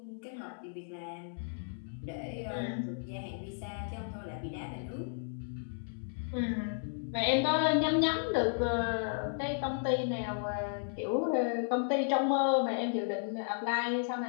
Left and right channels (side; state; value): right; silent; digital silence